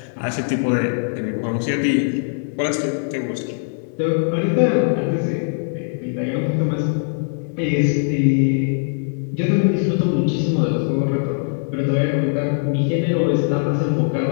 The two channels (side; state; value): right; silent; digital silence